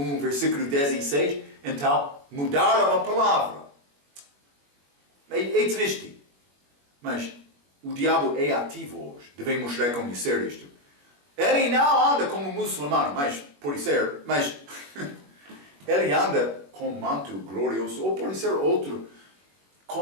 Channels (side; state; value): left; late; 21 ms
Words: versículo 16. Então mudaram a palavra. É triste. Mas o diabo é ativo hoje. Devemos reconhecer isto. Ele não anda como muçulmano, mas pode ser, mas ele anda com manto glorioso, ou pode ser outro,